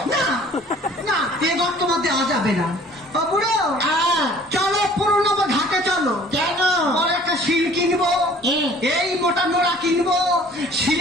না না, এ গর্ত মধ্যে দেওয়া যাবে না। ও বুড়ো, হ্যাঁ। চলো পুরনো ঘাটে চলো। কেন? বড় একটা শিল কিনবো, এই মোটা নোড়া কিনবো,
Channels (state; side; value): normal; both; correlation 0.52